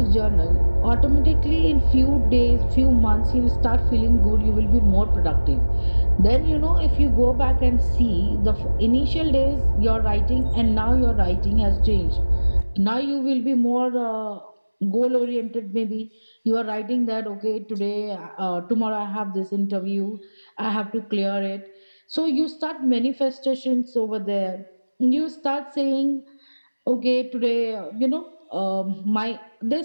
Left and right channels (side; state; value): both; inverted; correlation -1.00